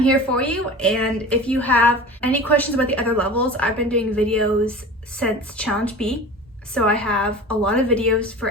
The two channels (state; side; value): normal; both; correlation 0.36